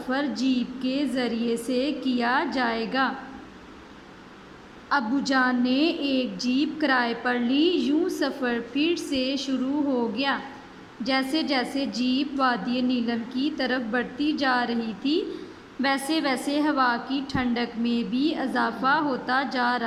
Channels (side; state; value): both; identical; correlation 1.00